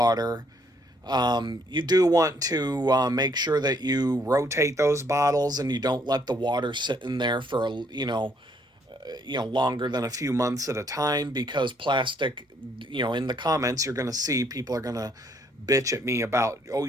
You do want to make sure that you rotate those bottles and you don't let the water sit in there for longer than a few months at a time, because plastic, in the comments you're going to see people are going to bitch at me about, oh,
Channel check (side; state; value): both; normal; correlation 0.68